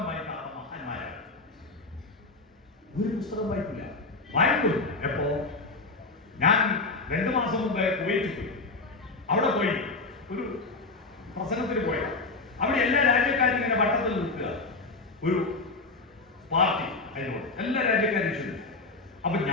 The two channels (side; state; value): right; quieter; 3.6 dB